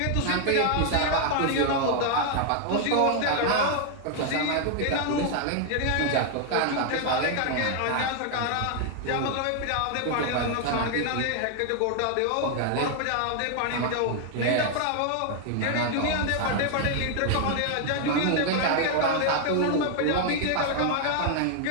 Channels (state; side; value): different; both; correlation 0.00